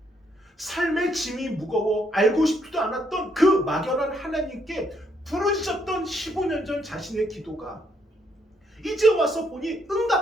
삶의 짐이 무거워 알고 싶지도 않았던 그 막연한 하나님께 부르짖었던 15년 전 자신의 기도가 이제 와서 보니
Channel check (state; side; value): normal; both; correlation 0.73